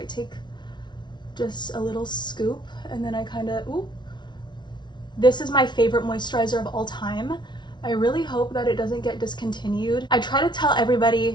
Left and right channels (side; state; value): right; late; 0.21 ms